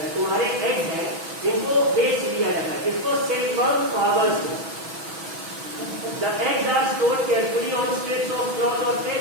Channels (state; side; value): late; left; 6.2 ms